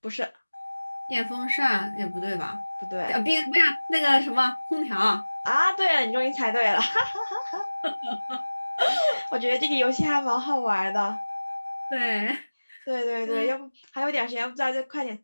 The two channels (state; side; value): inverted; both; correlation -1.00